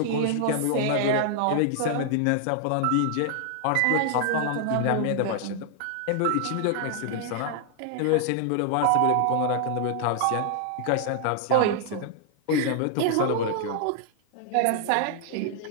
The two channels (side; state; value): both; different; correlation 0.00